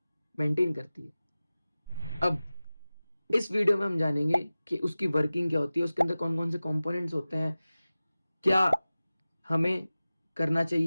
मेंटेन करती है। अब इस वीडियो में हम जानेंगे कि उसकी वर्किंग क्या होती है, उसके अंदर कौन कौन से कंपोनेंट्स होते हैं, क्या हमें करना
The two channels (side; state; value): both; inverted; correlation -0.97